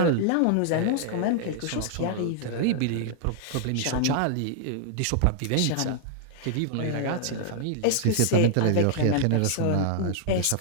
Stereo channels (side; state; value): both; different; correlation -0.01